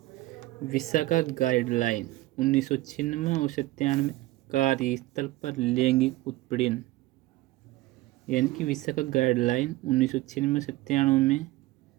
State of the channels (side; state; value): left; quieter; 18.0 dB